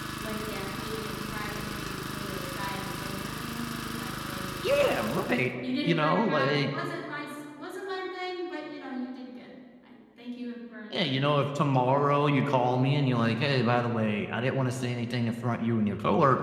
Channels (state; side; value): identical; both; correlation 1.00